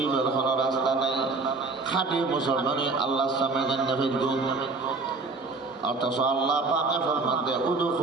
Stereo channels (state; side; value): quieter; left; 3.8 dB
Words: কোনো রাস্তা নেই, খাঁটি মুসলমানি আল্লাহর সামনে জান্নাতের গুণ। অথচ আল্লাহ পাকে ফরমাতে